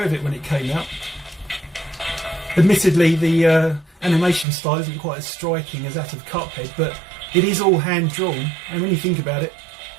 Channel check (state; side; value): drops out; left; at 4.5 s